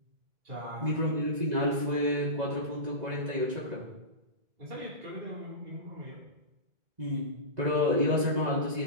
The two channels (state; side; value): late; left; 2.0 ms